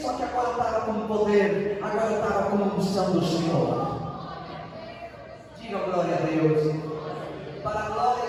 só que agora eu estava com poder, agora eu estava com a unção do Senhor. Diga glória a Deus. Para a glória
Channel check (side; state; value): both; identical; correlation 1.00